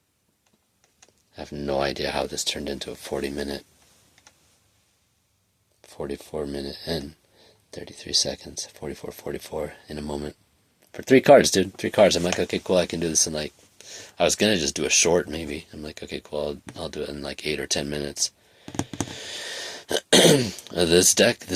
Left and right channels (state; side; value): identical; both; correlation 1.00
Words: I have no idea how this turned into a 44 minute and 33 seconds. 44 in a moment. For 3 cards, dude. 3 cards. I'm like, okay, cool, I can do this in I was gonna just do a short, maybe. I'm like, okay, cool, I'll do it in 8 or 10 minutes. This